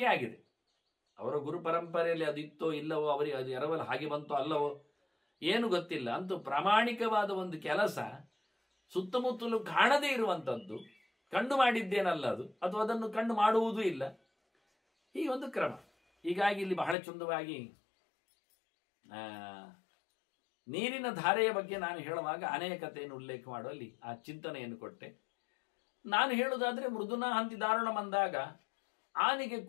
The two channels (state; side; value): drops out; right; at 16.9 s